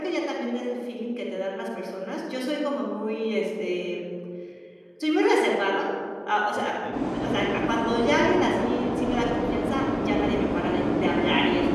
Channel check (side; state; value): both; identical; correlation 1.00